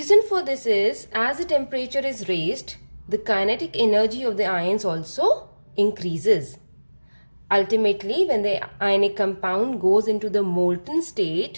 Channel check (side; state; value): both; inverted; correlation -1.00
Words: for this is, as the temperature is raised, the kinetic energy of the ions also increases. Ultimately, when the ionic compound goes into the molten